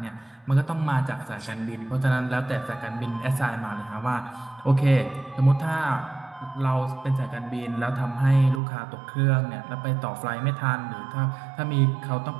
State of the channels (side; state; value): left; drops out; at 8.6 s